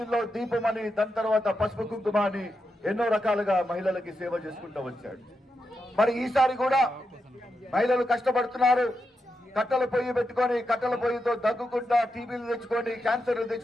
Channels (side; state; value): both; normal; correlation 0.86